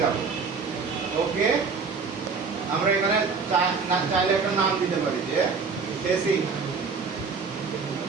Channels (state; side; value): quieter; left; 5.1 dB